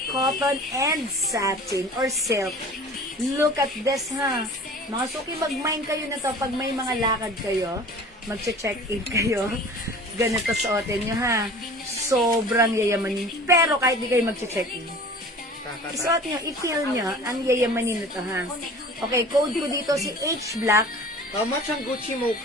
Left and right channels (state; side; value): normal; both; correlation 0.42